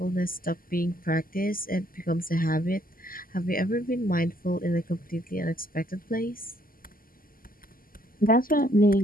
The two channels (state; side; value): late; right; 0.42 ms